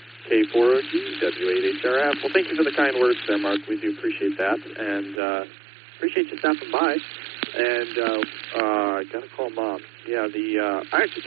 K4OG, W8HRF. Well, thank you for the kind words there, Mark. We do appreciate that, and appreciate you stopping by. And I got to call Mom. Yeah, I actually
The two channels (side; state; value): left; drops out; at 5.2 s